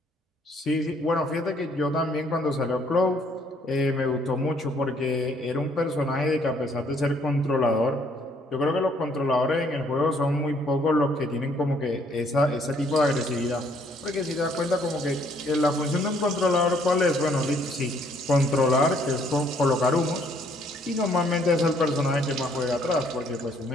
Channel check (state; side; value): normal; both; correlation 0.65